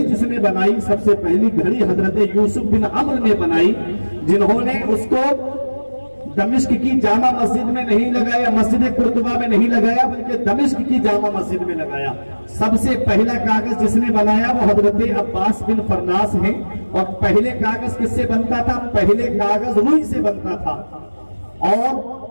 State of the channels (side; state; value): both; inverted; correlation -1.00